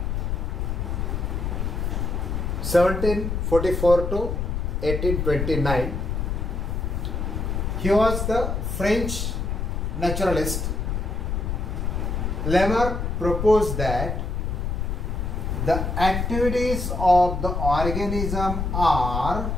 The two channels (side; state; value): left; noise; rumble, 1 dB below the sound